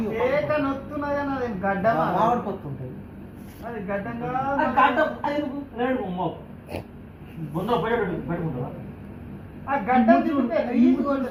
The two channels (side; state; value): both; identical; correlation 1.00